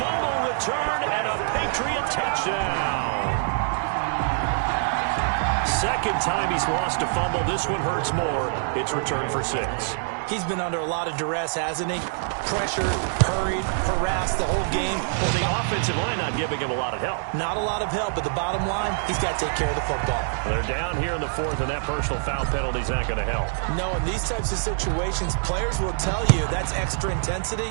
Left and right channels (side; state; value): left; silent; digital silence